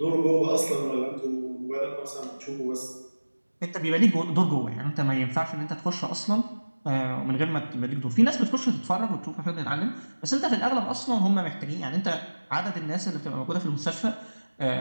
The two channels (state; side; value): inverted; both; correlation -1.00